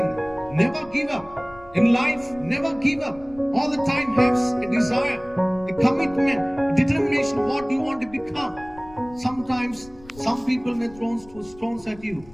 Never give up. In life, never give up. All the time have a desire, a commitment, a determination what you want to become. Sometimes some people may throw stones at you,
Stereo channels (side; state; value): left; noise; rumble, 22 dB below the sound